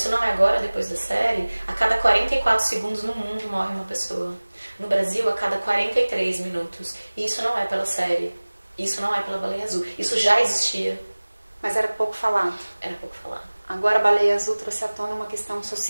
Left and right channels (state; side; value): inverted; both; correlation -1.00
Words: não é agora, depois da série, a cada 44 segundos no mundo morre uma pessoa. No Brasil, a cada 43 minutos. E isso não é pela série. Isso não é pela baleia azul. Isso já existia. Mas era pouco falado. Era pouco falado. Agora a baleia azul trouxe à tona uma questão